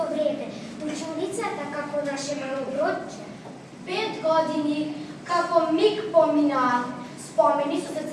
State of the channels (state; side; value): identical; both; correlation 1.00